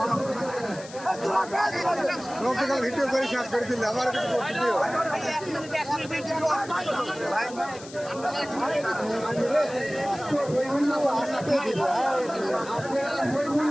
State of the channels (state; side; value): noise; left; hiss, 17 dB below the sound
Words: ভিডিও করে শেষ করে দিলে আমার